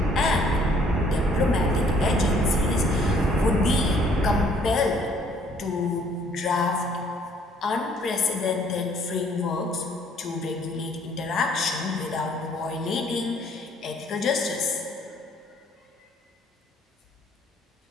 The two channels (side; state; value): both; normal; correlation 0.61